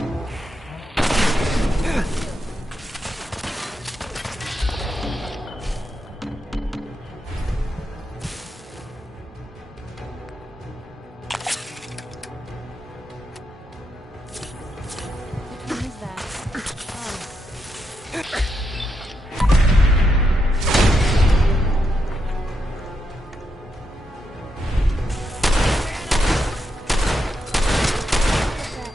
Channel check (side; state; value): both; normal; correlation 0.82